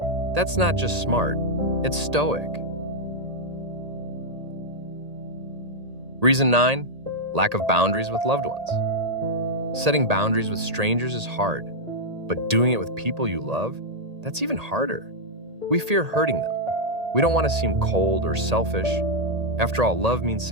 That's not just smart, it's Stoic. Reason 9, lack of boundaries with loved ones. Setting boundaries with strangers is hard, but doing it with people you love, that's even harder. We fear hurting them. We don't want to seem cold or selfish. After all, love means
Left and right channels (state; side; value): late; left; 1.8 ms